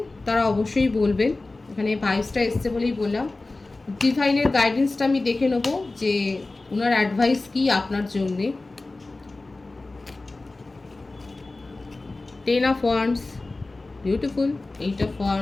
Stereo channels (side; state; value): right; quieter; 3.2 dB